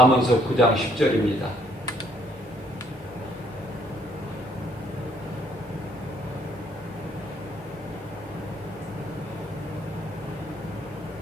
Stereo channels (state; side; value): normal; both; correlation 0.66